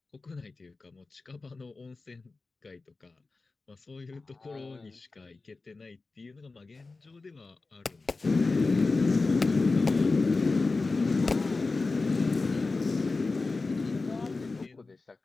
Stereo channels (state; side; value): quieter; right; 3.7 dB